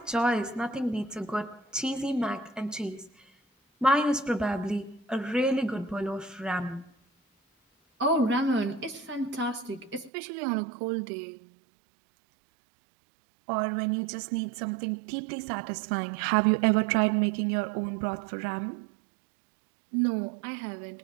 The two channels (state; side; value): drops out; left; at 10.1 s